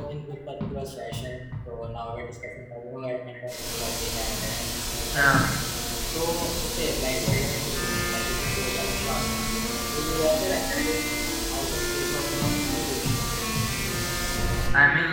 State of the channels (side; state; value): both; identical; correlation 1.00